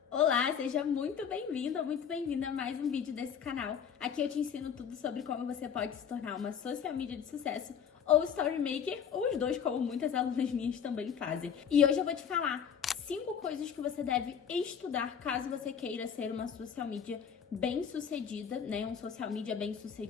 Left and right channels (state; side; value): quieter; right; 7.7 dB